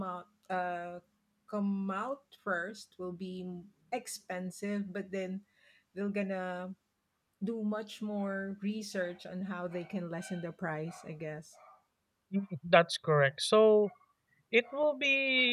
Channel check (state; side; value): identical; both; correlation 1.00